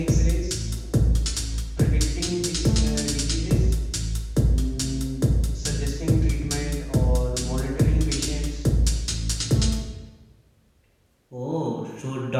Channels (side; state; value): both; identical; correlation 1.00